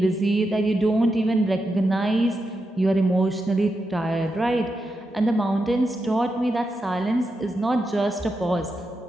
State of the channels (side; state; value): both; normal; correlation 0.87